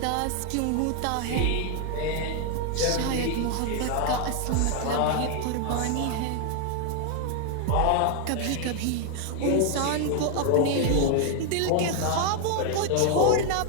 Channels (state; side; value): different; both; correlation 0.00